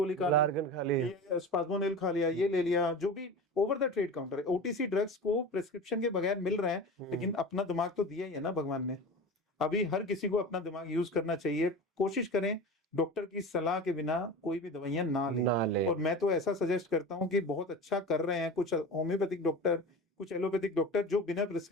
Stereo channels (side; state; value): both; normal; correlation 0.31